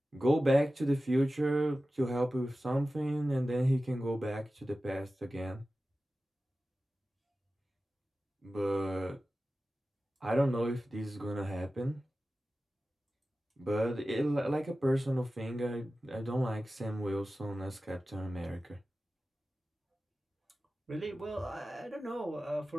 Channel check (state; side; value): normal; both; correlation 0.95